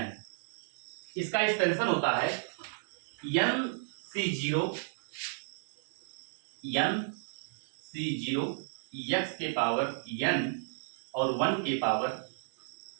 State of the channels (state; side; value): silent; left; digital silence